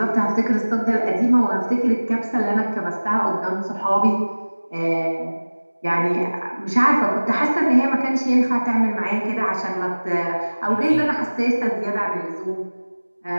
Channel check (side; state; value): both; inverted; correlation -1.00